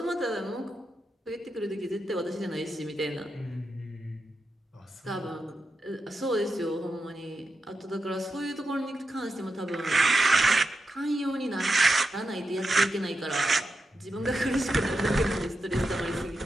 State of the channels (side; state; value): both; normal; correlation 0.88